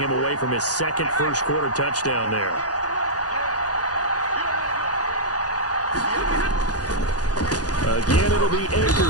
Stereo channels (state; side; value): late; right; 0.68 ms